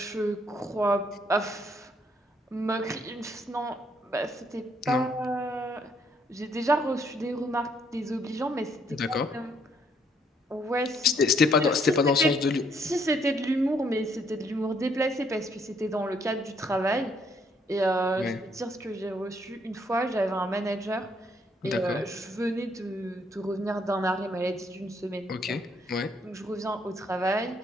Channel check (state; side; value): normal; both; correlation 0.69